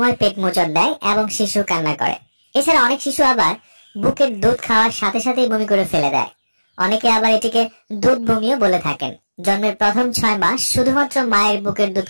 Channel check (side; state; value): both; inverted; correlation -1.00